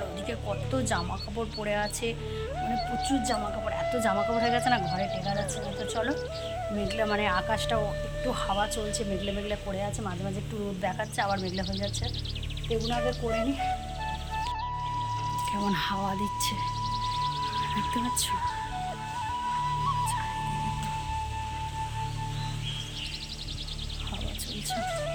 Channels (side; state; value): both; identical; correlation 1.00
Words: ওদিকে কত জামা কাপড় পরে আছে, মানে প্রচুর জামা কাপড়, এত জামা কাপড় হয়ে গেছে না ঘরে টেকা যাচ্ছে না। তো চলো মেঘলা মানে আকাশটাও একটু হাওয়া চলছে, মেঘলা মেঘলা করে আছে, মাঝে মাঝে একটু রোদ দেখাচ্ছে আবার মেঘলা হয়ে যাচ্ছে। এগুলো আগে করে নিই। কেমন হাওয়া দিচ্ছে দেখতে পাচ্ছ, হাওয়া চলছে।